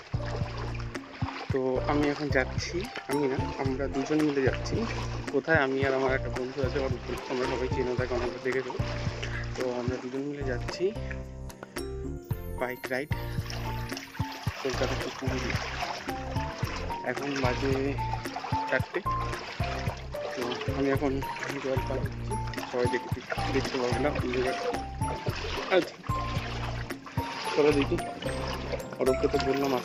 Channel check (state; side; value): identical; both; correlation 1.00